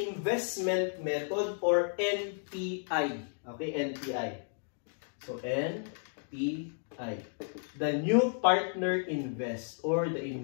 method or NPI. Okay, NPI. So NPI. The new partner invest or the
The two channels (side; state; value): right; silent; digital silence